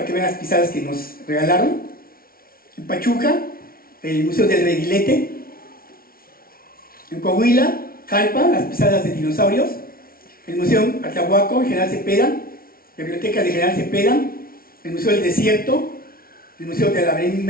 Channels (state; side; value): late; right; 0.43 ms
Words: que vean las pisadas que nos regalaron. En Pachuca, el Museo del Reguilete. En Coahuila, Jalpa, las pisadas de dinosaurios. El Museo Atlahuaco, General Cepeda. La Biblioteca de General Cepeda. El Museo del Desierto. El Museo de la